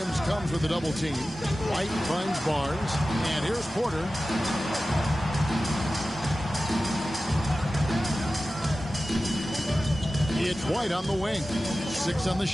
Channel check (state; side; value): normal; both; correlation 0.95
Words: comes with a double team. White finds Barnes. And here's Porter. It's White on the wing. 6 on the